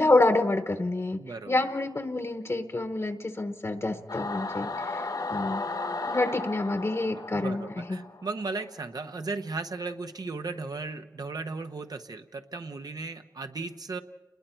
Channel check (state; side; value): normal; both; correlation 0.80